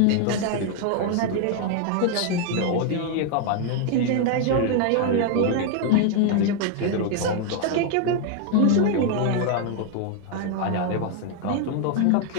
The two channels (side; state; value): both; different; correlation 0.00